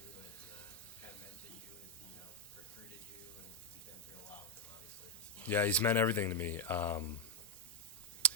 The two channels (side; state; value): both; normal; correlation 0.02